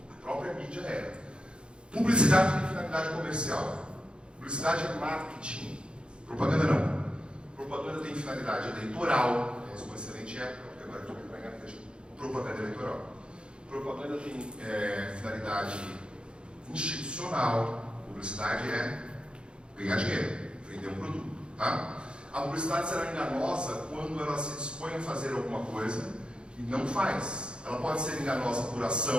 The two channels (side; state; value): left; late; 0.054 ms